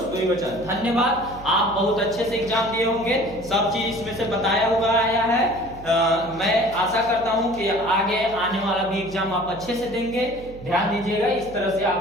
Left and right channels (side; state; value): right; noise; hum, 17 dB below the sound